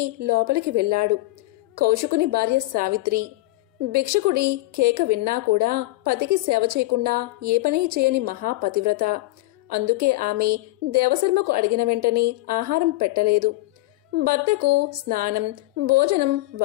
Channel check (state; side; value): quieter; right; 19.4 dB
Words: లోపలికి వెళ్లాడు. కౌశికుని భార్య సావిత్రి. భిక్షకుడి కేక విన్నా కూడా పతికి సేవ చేయకుండా ఏ పని చేయని మహాపతివ్రత. అందుకే ఆమె దేవశర్మకు అడిగిన వెంటనే ఆహారం పెట్టలేదు. భర్తకు స్నానం, భోజనం